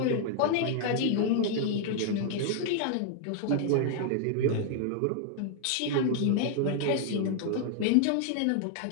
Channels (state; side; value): different; both; correlation 0.00